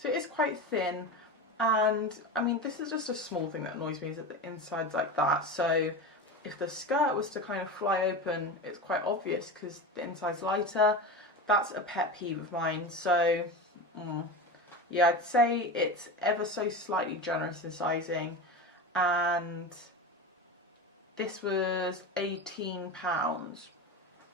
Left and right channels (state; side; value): normal; both; correlation 0.25